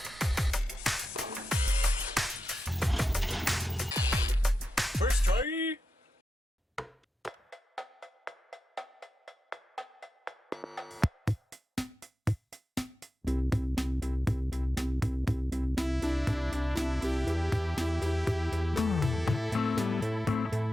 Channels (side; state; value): both; normal; correlation 0.90